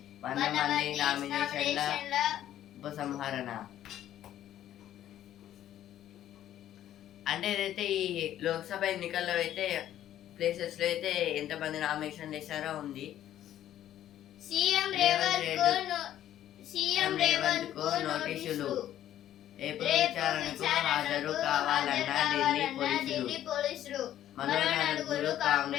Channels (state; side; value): quieter; right; 11.9 dB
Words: 100 మంది నామినేషన్ల ఉపసంహరణ. అంటే ఏదైతే ఈ లోక్సభ ఎన్నికల్లో అయితే ప్లేసెస్ లో అయితే ఎంతమంది నామినేషన్ చేశారో ఉంది. సీఎం రేవంత్ కు నోటీసులు, రేపు విచారణకు హాజరు కావాలన్న ఢిల్లీ పోలీసులు. మరో 4